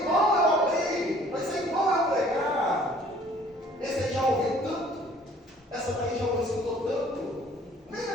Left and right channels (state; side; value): normal; both; correlation 0.54